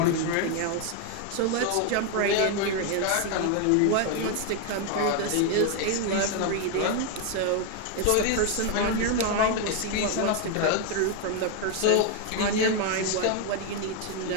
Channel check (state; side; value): different; both; correlation 0.01